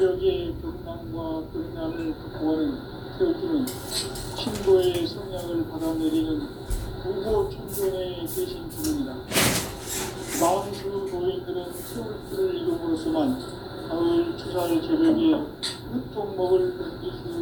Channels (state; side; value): identical; both; correlation 1.00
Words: 경남과 경난을 극복하는 태어주는 신고의 성향을 받아내리는 무고 천존의 대신 주문이다. 만수 노인들은 태울주를 이름으로서만 가을 추살 개벽의 유통목을 느낄 수